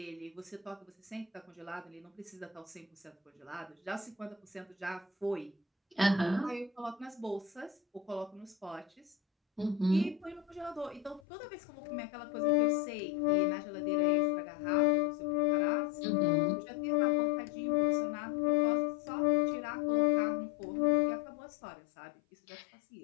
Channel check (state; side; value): drops out; right; at 11.2 s